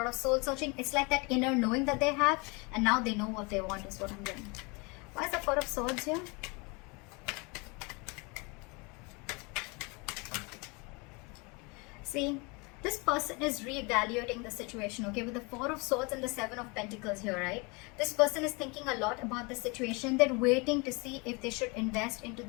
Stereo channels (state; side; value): quieter; right; 28.9 dB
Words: of soul searching. It's like that inner knowing that they have, and now they know what they want is what I'm getting. Why is the Four of Swords here? See, this person is reevaluating the situation, okay? With the Four of Swords and the Seven of Pentacles here, right? This person is thinking a lot about the situation. They're waiting to see if they should invest into